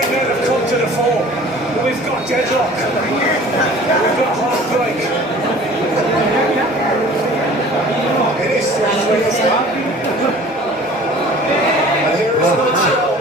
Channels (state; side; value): normal; both; correlation 0.46